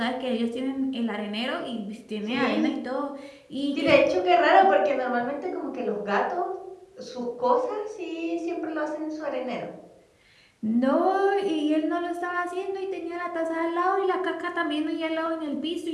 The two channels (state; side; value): identical; both; correlation 1.00